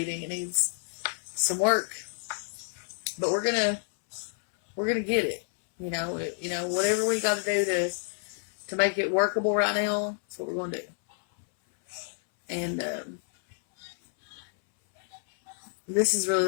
It needs some work. But we're gonna get it. Whatever we got to do to make it workable right now, that's what we're going to do. And this is really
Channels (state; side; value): silent; right; 59 dB below the other